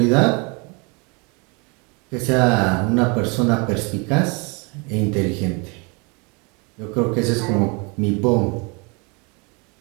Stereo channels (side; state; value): left; quieter; 31.1 dB